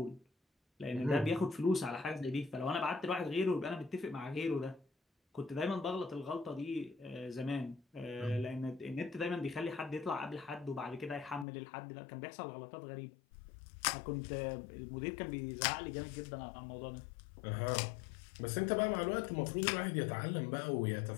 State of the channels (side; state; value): right; drops out; at 11.5 s